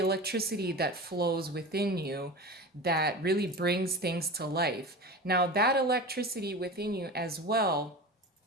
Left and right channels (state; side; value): normal; both; correlation 0.30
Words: that flows within you that really brings things to life. Now, that electricity within you as well